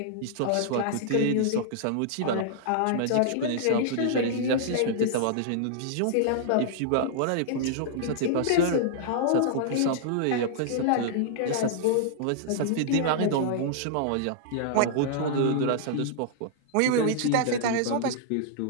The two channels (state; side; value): different; both; correlation -0.01